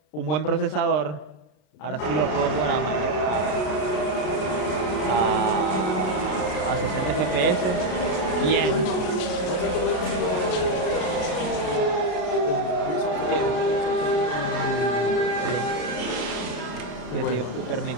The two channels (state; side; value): late; right; 33 ms